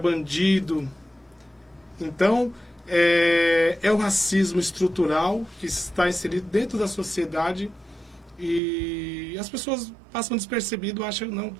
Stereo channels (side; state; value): left; drops out; at 8.6 s